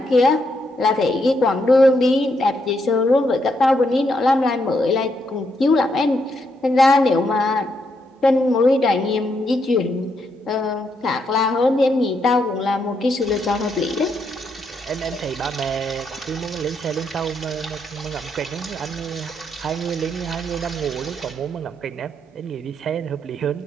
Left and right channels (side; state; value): both; normal; correlation 0.78